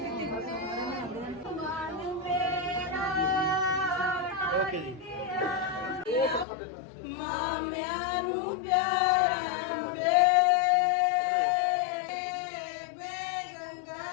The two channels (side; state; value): right; drops out; at 6.5 s